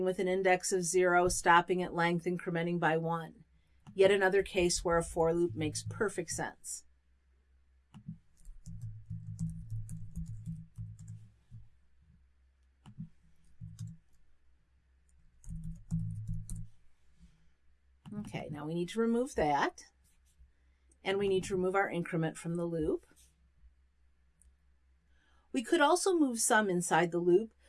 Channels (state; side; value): identical; both; correlation 1.00